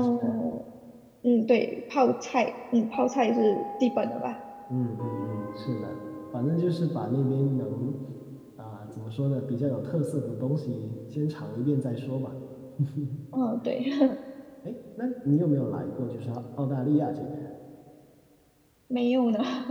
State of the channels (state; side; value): identical; both; correlation 1.00